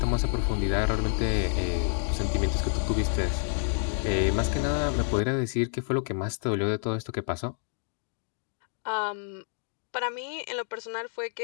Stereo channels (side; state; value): right; silent; digital silence